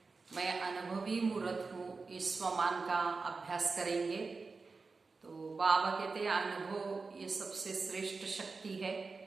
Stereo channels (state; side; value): quieter; left; 4.3 dB